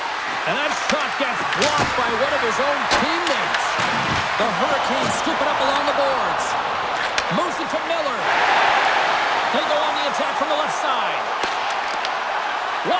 And that shot gets blocked by one of his own teammates. The Hurricanes scoop it up along the boards. Moves it to Miller. They go on the attack from the left side. What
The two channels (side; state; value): both; identical; correlation 1.00